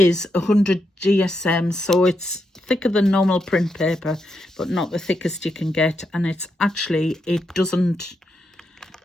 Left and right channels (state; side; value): normal; both; correlation 0.83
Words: 100 GSM, so it's thicker than normal print paper, but not the thickest you can get. And it's actually, it doesn't,